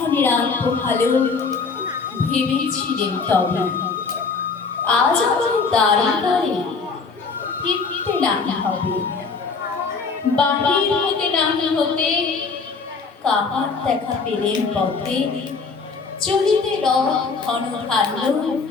আলো ভালো ভেবেছিলেন তবে আজ আমার দাঁড়িয়ে দাঁড়িয়ে ফিরতে না হবে। বাহির হতে না হতে কাহার দেখা পেলেন পথে। চলিতে রথ ঘন ধান্য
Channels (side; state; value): right; quieter; 4.7 dB